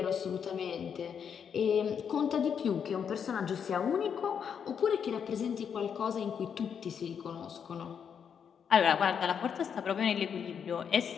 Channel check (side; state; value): right; quieter; 7.4 dB